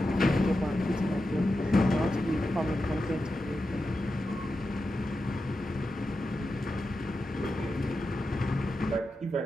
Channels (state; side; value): normal; both; correlation 0.90